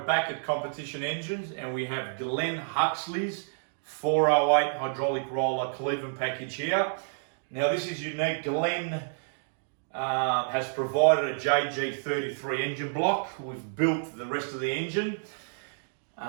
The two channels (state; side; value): silent; left; digital silence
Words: at Competition Engines and we have Glenn Huxley's 408 hydraulic roller Cleveland package here. Now this is unique. Glenn has provided a JG33 engine block. We've built the rest of the engine.